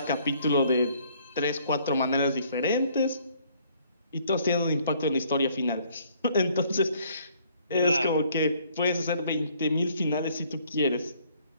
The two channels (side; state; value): both; inverted; correlation -0.63